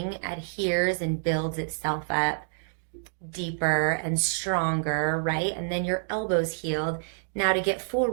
adheres and builds itself up deeper and stronger, right? And then your elbow's healed. Now, to get full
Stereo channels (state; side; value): silent; left; digital silence